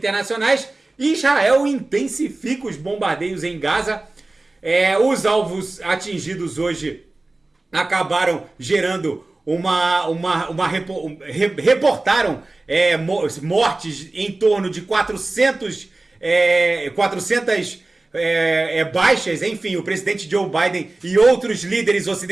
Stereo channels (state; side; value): quieter; left; 3.0 dB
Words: Israel intensifica os bombardeios em Gaza. Os alvos atingidos hoje acabaram gerando reportaram mortes em torno de 400 baixas. Enfim, o presidente Joe Biden e outros líderes